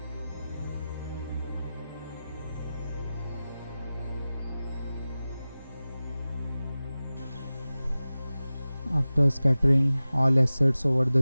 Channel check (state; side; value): inverted; both; correlation -0.96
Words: After scattering all assets over